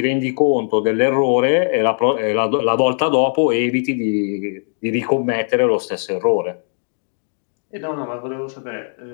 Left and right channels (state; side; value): silent; right; 66 dB below the other